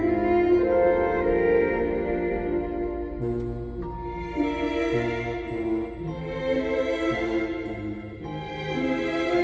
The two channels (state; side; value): identical; both; correlation 1.00